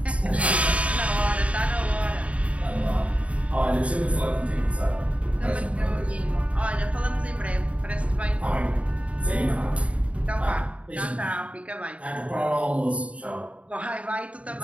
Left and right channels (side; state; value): left; late; 0.065 ms